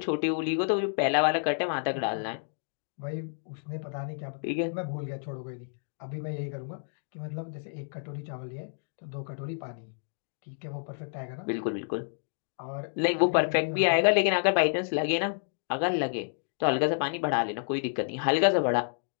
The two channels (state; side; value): silent; right; digital silence